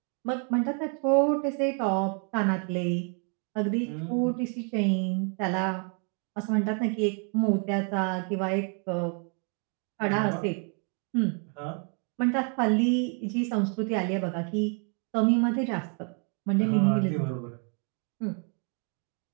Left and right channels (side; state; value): left; quieter; 38.1 dB